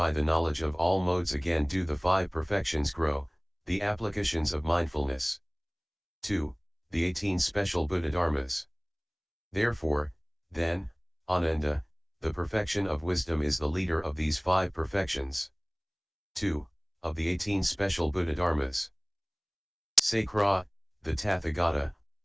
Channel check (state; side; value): identical; both; correlation 1.00